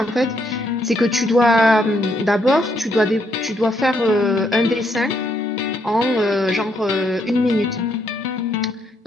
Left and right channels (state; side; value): normal; both; correlation 0.74